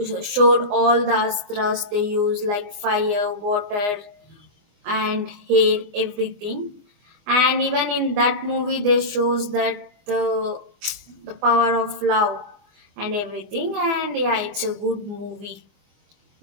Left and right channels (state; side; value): late; left; 24 ms